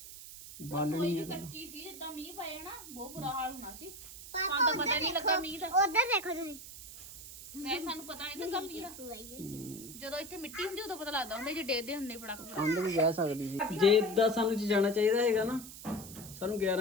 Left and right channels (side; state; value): right; noise; hiss, 13 dB below the sound